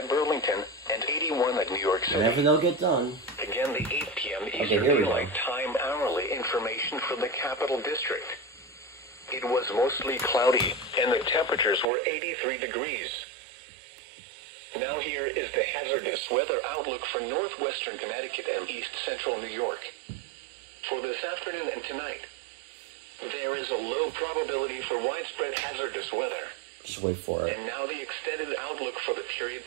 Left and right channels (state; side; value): drops out; left; at 11.9 s